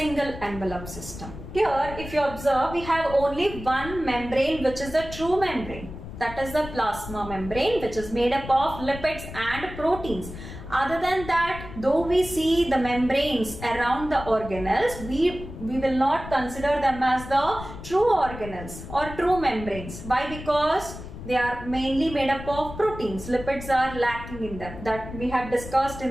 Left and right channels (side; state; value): left; noise; rumble, 12 dB below the sound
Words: envelope system? Here, if you observe, we have only one membrane, which is the true membrane. That is the plasma membrane, which is made up of lipids and proteins. Other than that, though we see the membranes around the organelles, we will not consider them as the true organelles or true membranes. Why? Because they are mainly made up of proteins. Lipids are lacking in them. That we have discussed